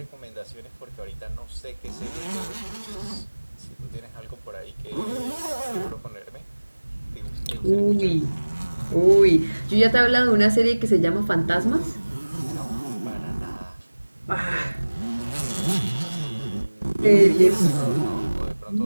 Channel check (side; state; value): both; inverted; correlation -1.00